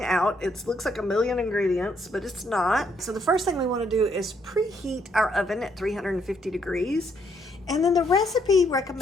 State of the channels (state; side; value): normal; both; correlation 0.72